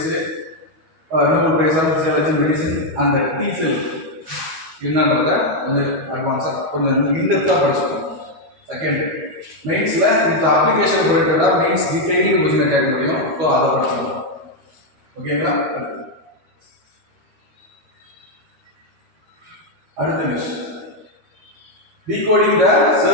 prize of physiology medicine. அந்த டீசெல் என்னன்றத கொஞ்சம் அட்வான்ஸாக கொஞ்சம் இன்டெப்த்தாக படிச்சுக்கணும். செகண்ட் மெயின்ஸில் இந்த அப்ளிகேஷன் ரிலேட்டடாக மெயின்ஸ் டீட்டெயிலிங் கொஸ்டினை கேட்க முடியும். ஸோ அதை படிச்சுக்கணும். ஓகேங்களா? அடுத்த news decoding the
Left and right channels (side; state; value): left; late; 13 ms